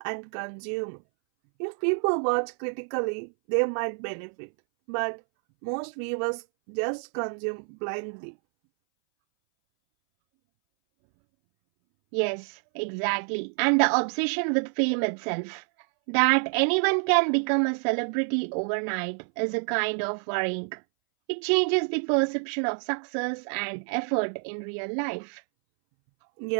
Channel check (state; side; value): silent; left; 60 dB below the other